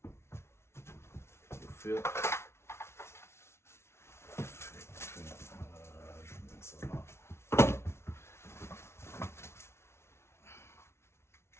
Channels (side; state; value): right; late; 0.13 ms